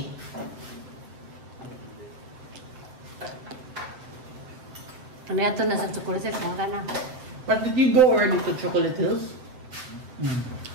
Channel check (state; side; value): late; left; 7.7 ms